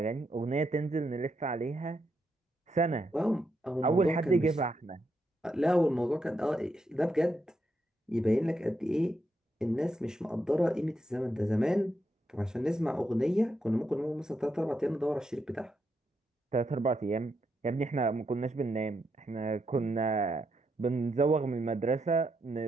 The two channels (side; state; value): both; normal; correlation 0.81